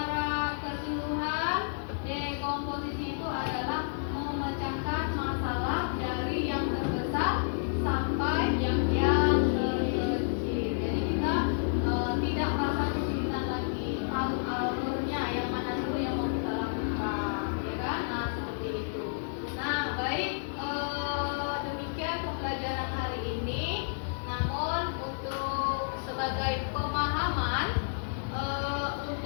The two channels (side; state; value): right; silent; digital silence